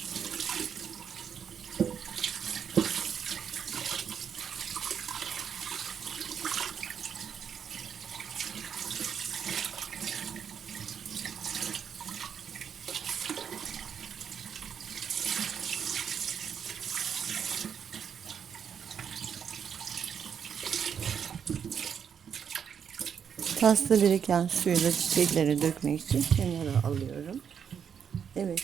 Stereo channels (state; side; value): quieter; left; 7.6 dB